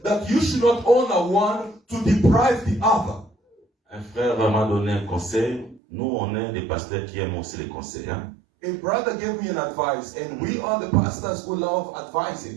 you should not honor one to deprive the other. Un frère m'a donné un conseil. Nous, on est des pasteurs qui aiment aussi les conseils. Hein? A brother gave me an advice, and we are the pastors who love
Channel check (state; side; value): drops out; left; at 5.8 s